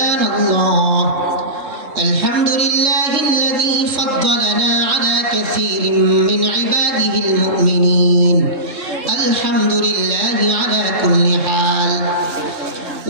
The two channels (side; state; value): left; late; 3.4 ms